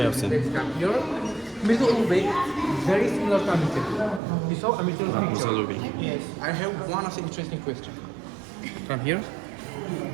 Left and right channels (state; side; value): drops out; left; at 4.2 s